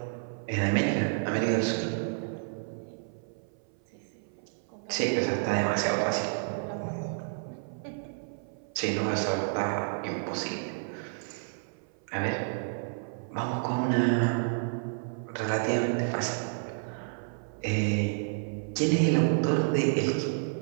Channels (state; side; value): silent; left; 56 dB below the other